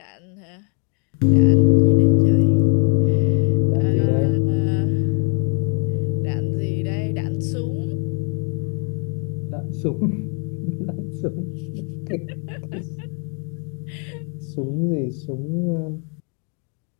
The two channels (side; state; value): right; quieter; 37.3 dB